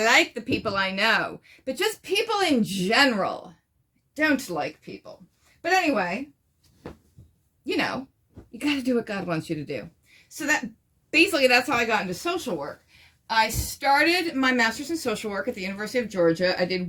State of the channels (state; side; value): identical; both; correlation 1.00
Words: the people I know. But just people in general, don't like people. But anyway, you know, you got to do what God wants you to do. So that's how I got into social work. I started my master's in social work at the University of Georgia. I